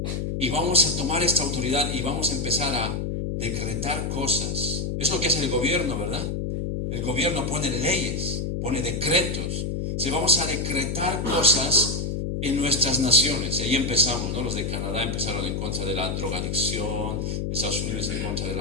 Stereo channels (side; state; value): left; noise; hum, 2 dB below the sound